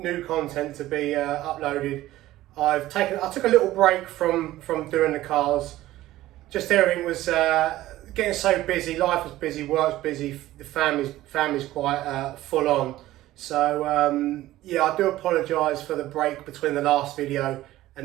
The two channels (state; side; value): quieter; left; 15.5 dB